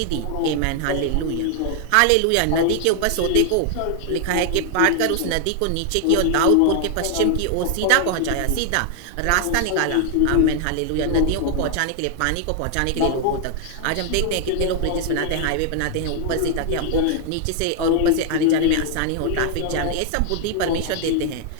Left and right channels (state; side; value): different; both; correlation 0.00